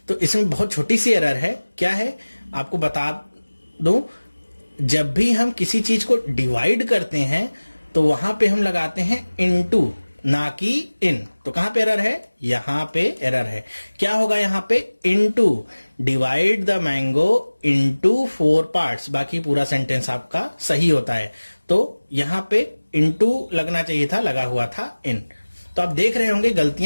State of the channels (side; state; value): both; inverted; correlation -1.00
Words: तो इसमें बहुत छोटी सी एरर है। क्या है आपको बता दूं, जब भी हम किसी चीज को डिवाइड करते हैं तो वहां पे हम लगाते हैं इनटू, ना कि इन। तो कहां पे एरर है, यहां पे एरर है। क्या होगा यहां पे, into, divide the mango into 4 parts। बाकी पूरा सेंटेंस आपका सही होता है। तो यहां पे इनटू लगना चाहिए था, लगा हुआ था इन। तो आप देख रहे होंगे